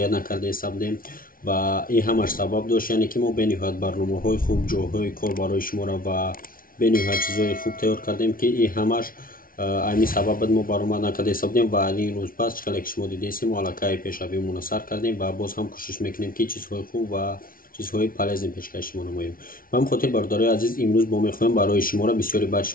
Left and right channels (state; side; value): late; right; 0.42 ms